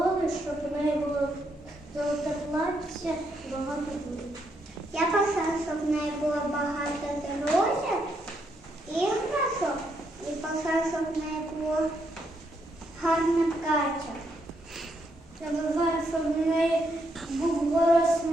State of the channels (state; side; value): normal; both; correlation 0.77